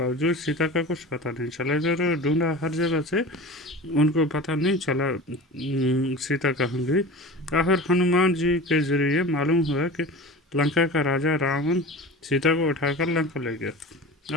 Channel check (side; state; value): both; normal; correlation 0.35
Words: सीता का कुछ पता नहीं चला। इधर ढूंढा हर जगह से, उनको पता नहीं चला सीता कहाँ गई। आखिर हनुमान जी के जरिए मालूम हुआ कि लंका का राजा रावण सीता को उठाकर लंका ले गया।